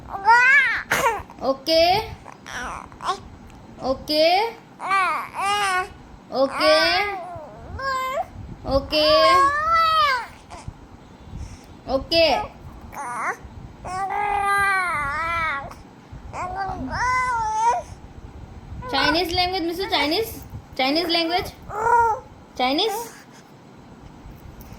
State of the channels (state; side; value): identical; both; correlation 1.00